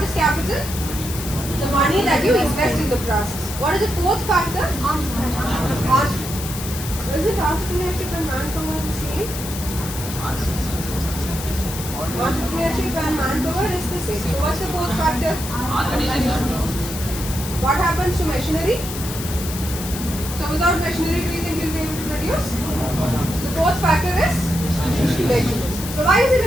is capital? The money that you invest in the process. What is the fourth factor? Entrepreneurship. Is it entrepreneurship and manpower the same? Entrepreneurship and manpower is the same. So what's the fourth factor? What happens to machinery? So without machinery, do you think you'll be able to produce? The fourth factor is machinery. So why is it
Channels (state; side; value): noise; left; hiss, 9 dB below the sound